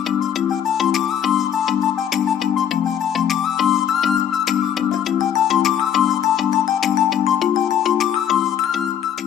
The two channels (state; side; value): quieter; right; 9.3 dB